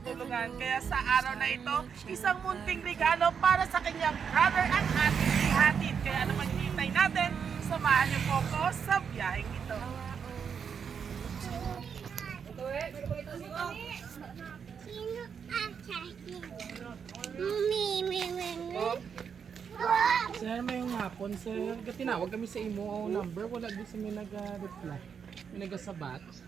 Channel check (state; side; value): quieter; left; 6.9 dB